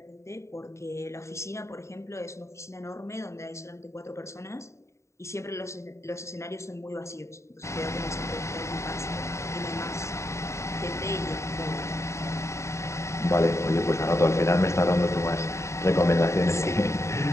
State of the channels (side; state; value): right; late; 0.14 ms